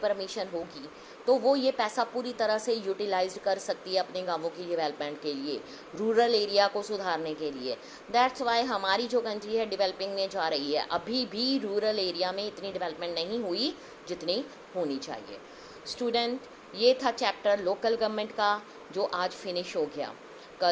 होगी तो वो ये पैसा पूरी तरह से यूटिलाइज कर सकती है अपने गांवों की डेवलपमेंट के लिए, रूरल एरिया को सुधारने के लिए. दैट्स वाई हमारी जो कंट्री है डेवलपिंग में जा रही है. अभी भी रूरल एरिया में इतनी डेवलपमेंट नहीं हुई जितनी होनी चाहिए. स्टूडेंट, ये था चैप्टर लोकल गवर्नमेंट का जो आज फिनिश हो गया.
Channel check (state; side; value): identical; both; correlation 1.00